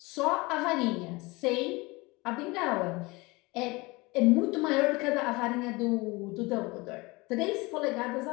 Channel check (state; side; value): quieter; right; 24.1 dB